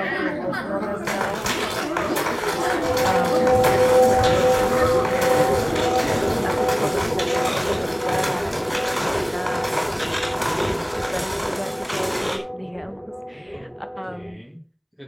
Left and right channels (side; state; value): both; identical; correlation 1.00